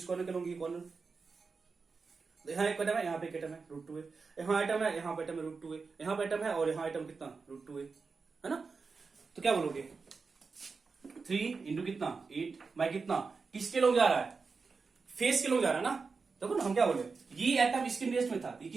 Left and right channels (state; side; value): quieter; left; 4.7 dB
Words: कॉर्नर के लोगे, कॉर्नर यहाँ एक एटम है, यहाँ पे एक एटम है रूट 2a, यहाँ एटम है, यहाँ पे एटम है रूट 2a, यहाँ पे एटम है और यहाँ एटम कितना रूट 2a है ना। तो क्या बोलोगे 3 इंटू कितना 8 बाय कितना, किसके लोग जा रहा है, फेस के लोग जा रहा है ना। देखो ना हम क्या बोले, ये एटम इसके नियरेस्ट में था, ये